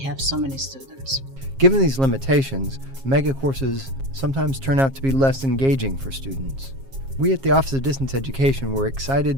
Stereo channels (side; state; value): left; late; 7.4 ms